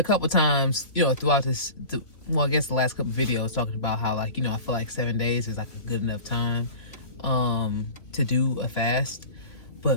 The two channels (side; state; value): right; late; 2.8 ms